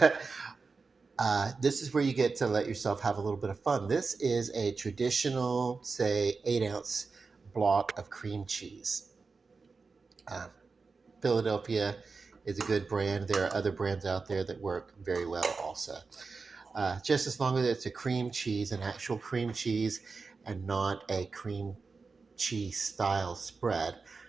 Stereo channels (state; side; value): quieter; left; 4.4 dB